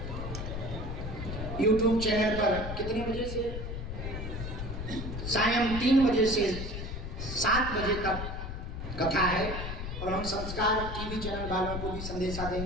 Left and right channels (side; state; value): left; noise; rumble, 6 dB below the sound